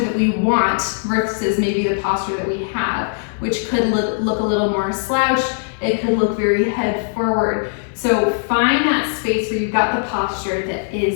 that we want versus maybe the posture that we have, which could look a little more slouched. It could look very head forward. So find that space where you've got the posture that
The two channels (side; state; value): right; silent; 57 dB below the other